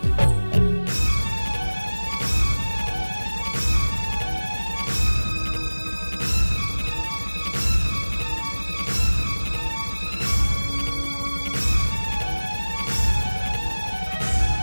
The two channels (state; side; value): inverted; both; correlation -1.00